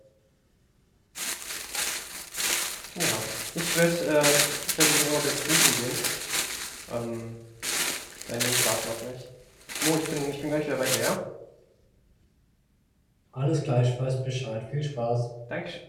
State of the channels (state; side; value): identical; both; correlation 1.00